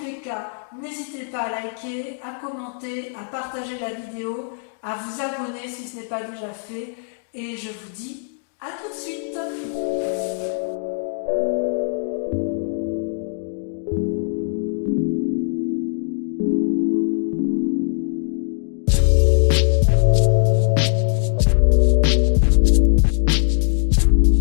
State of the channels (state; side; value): silent; right; digital silence